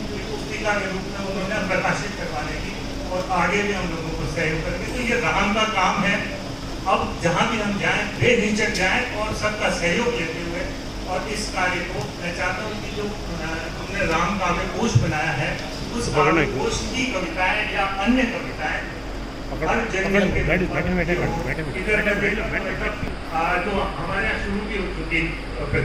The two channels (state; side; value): identical; both; correlation 1.00